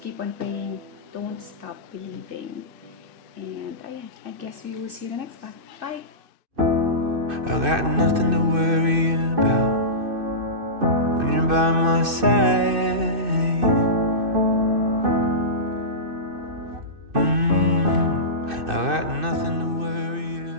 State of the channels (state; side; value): late; left; 2.6 ms